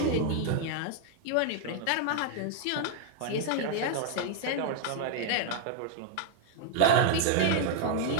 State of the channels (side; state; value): both; different; correlation 0.00